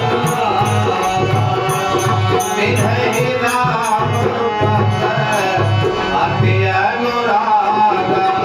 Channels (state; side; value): identical; both; correlation 1.00